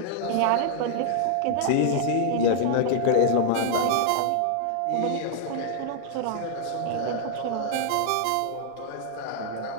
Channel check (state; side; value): different; both; correlation -0.01